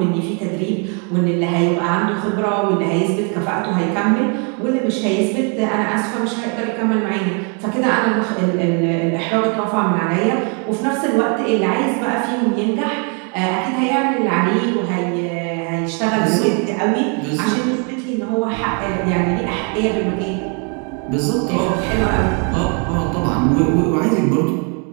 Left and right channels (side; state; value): left; quieter; 37.4 dB